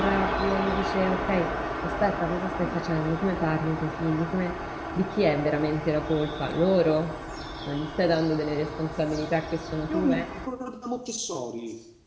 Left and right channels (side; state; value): both; identical; correlation 1.00